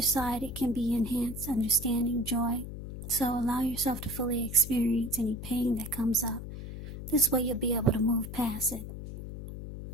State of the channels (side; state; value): left; noise; hum, 9 dB below the sound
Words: side, it can be enhanced understanding, joy. So allow yourself to fully experience any pain that comes up. This way you'll be able to move past it.